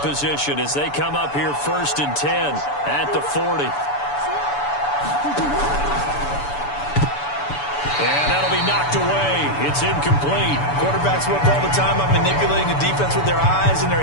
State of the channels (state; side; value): late; right; 6.9 ms